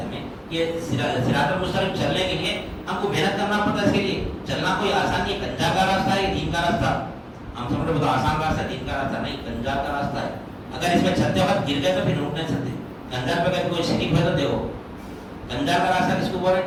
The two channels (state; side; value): identical; both; correlation 1.00